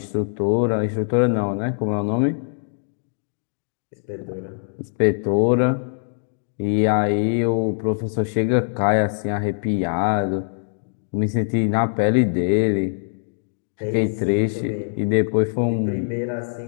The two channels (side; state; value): right; silent; digital silence